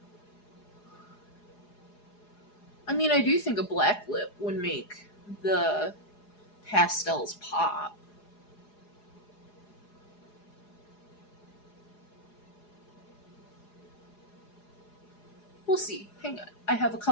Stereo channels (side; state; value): right; late; 4.8 ms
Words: I mean, I do think a black lip would make the pastels pop. We'll see. Hang on. I have a